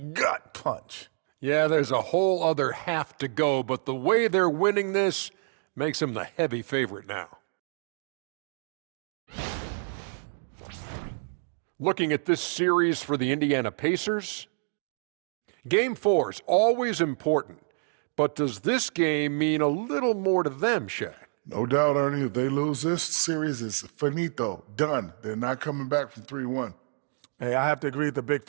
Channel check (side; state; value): left; silent; 59 dB below the other